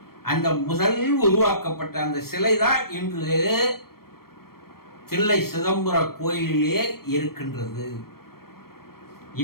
அந்த முதல் உருவாக்கப்பட்ட அந்த சிலை தான் இன்று தில்லை சிதம்பர கோயிலிலே இருக்கின்றது.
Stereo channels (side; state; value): right; late; 0.94 ms